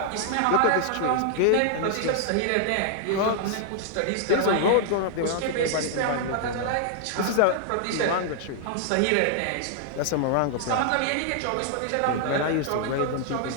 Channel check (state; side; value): different; both; correlation -0.01